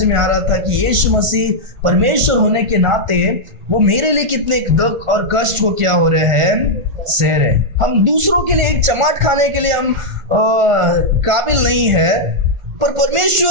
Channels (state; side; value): late; left; 1.4 ms